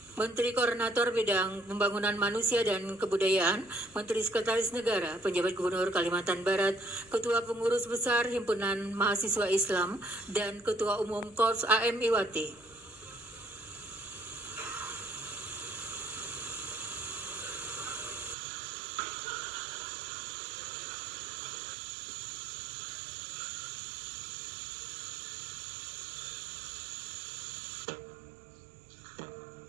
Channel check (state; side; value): drops out; left; at 18.4 s